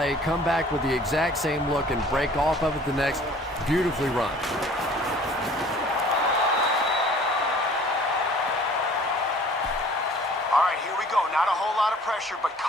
come back with the exact same look, and break off of it the next. Beautifully run. All right, here we go. Not a whole lot of pressure, but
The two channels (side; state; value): both; normal; correlation 0.50